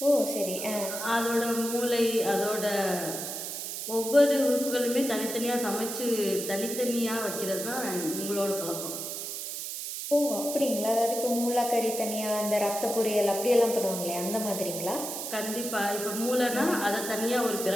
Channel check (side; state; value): right; noise; hiss, 6 dB below the sound